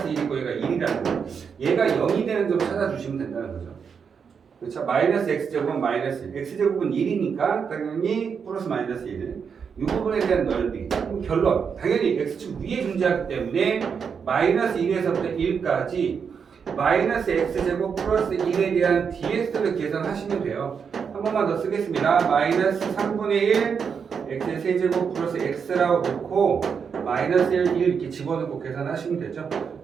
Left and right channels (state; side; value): quieter; left; 6.5 dB